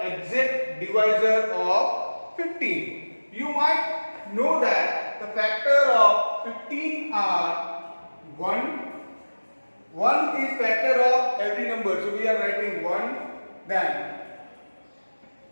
exact divisor of 15. You might know that the factor of 15 are 1. 1 is factor of every number, so we are writing 1, then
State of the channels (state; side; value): inverted; both; correlation -1.00